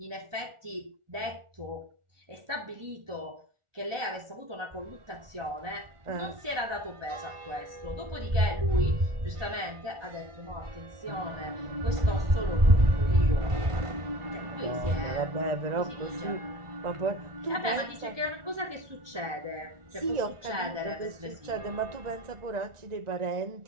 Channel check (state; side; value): late; left; 1.4 ms